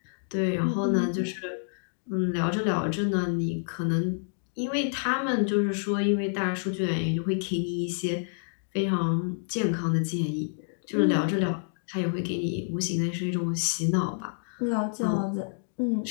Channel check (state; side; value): silent; right; digital silence